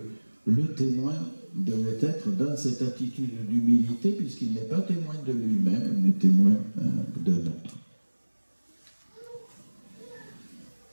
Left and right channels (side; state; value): both; inverted; correlation -1.00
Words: le témoin devait être dans cette attitude d'humilité, puisqu'il n'est pas témoin de lui-même, mais témoin d'un autre.